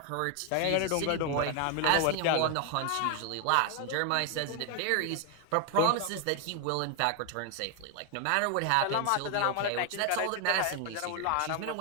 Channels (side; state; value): both; different; correlation 0.01